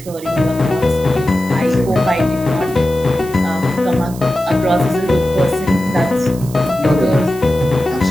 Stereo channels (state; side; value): noise; right; hiss, 18 dB below the sound